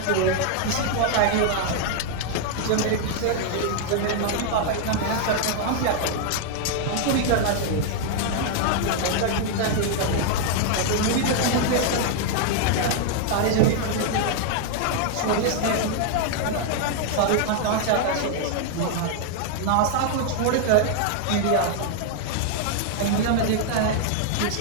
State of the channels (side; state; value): both; different; correlation 0.00